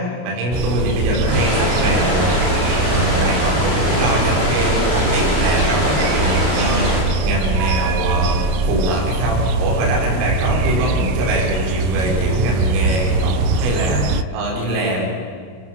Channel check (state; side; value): late; left; 32 ms